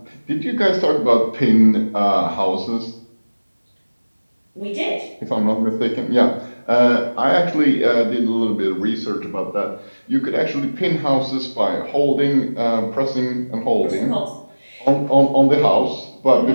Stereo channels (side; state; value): both; inverted; correlation -1.00